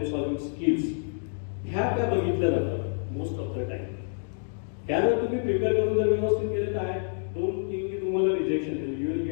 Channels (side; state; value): right; silent; digital silence